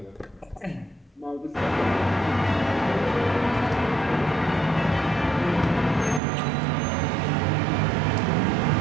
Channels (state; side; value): drops out; left; at 6.2 s